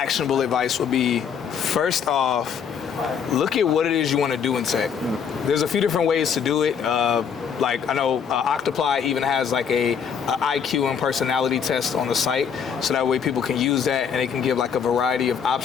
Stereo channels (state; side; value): quieter; right; 7.2 dB